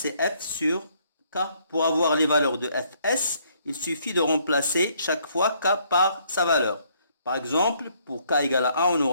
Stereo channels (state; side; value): inverted; both; correlation -0.67